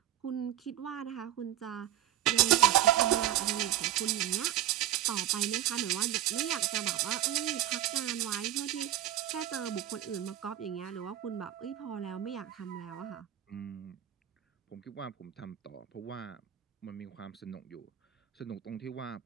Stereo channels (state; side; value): quieter; left; 12.5 dB